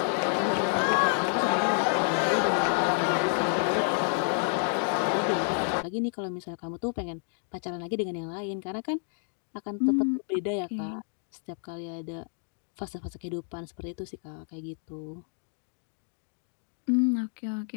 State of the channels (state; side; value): silent; right; 58 dB below the other